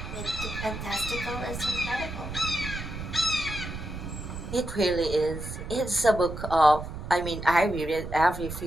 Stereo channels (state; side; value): noise; right; rumble, 8 dB below the sound